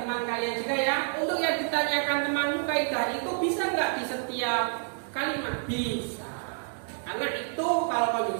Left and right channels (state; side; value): silent; left; 59 dB below the other